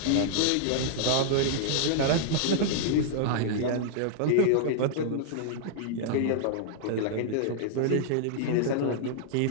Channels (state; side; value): different; both; correlation -0.01